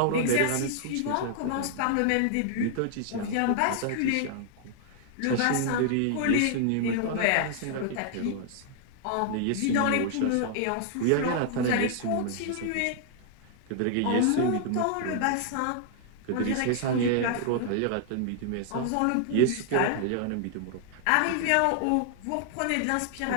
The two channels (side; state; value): both; different; correlation -0.01